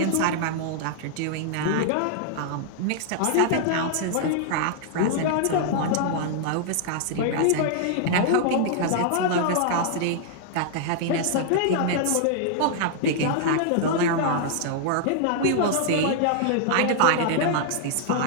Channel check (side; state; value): both; different; correlation -0.01